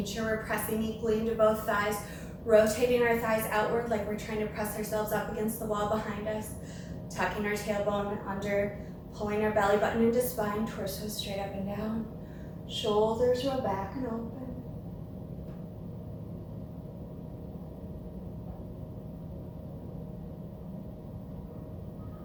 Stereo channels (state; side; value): identical; both; correlation 1.00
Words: sure we're pressing equally into both thighs, rotating our thighs outward like we're trying to press ourselves up against the wall behind us, tucking our tailbone under, pulling our belly button into spine, torso straight up and down, shoulders roll back and open.